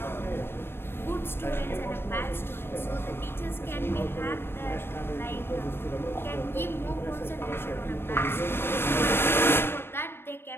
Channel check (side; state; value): right; late; 0.11 ms